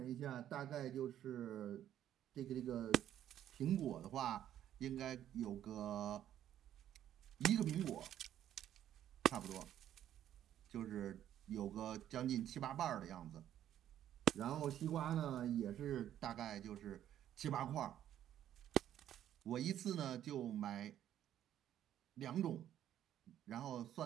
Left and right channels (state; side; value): quieter; left; 11.2 dB